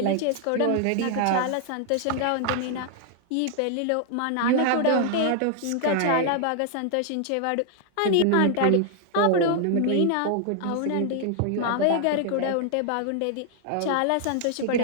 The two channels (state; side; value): different; both; correlation 0.00